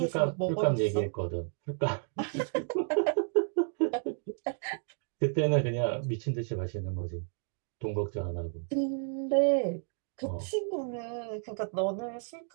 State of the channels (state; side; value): silent; left; 57 dB below the other